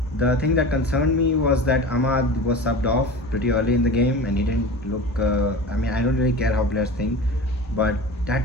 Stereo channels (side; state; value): both; normal; correlation 0.33